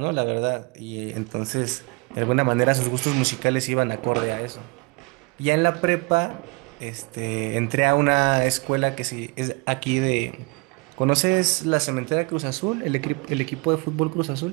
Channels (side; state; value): left; quieter; 28.9 dB